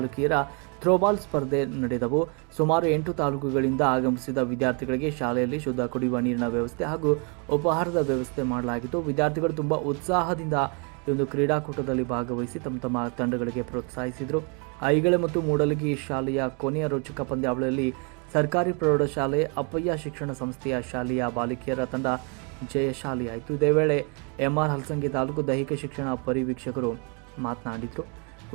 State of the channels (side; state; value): left; quieter; 35.2 dB